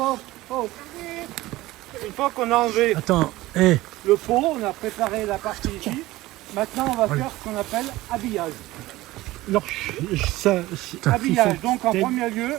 qu'on a enlevé le pot, on a préparé la partie ici. Maintenant, on va faire ce qu'on appelle habillage. Alors, Habillage, donc en premier lieu,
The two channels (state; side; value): quieter; left; 17.9 dB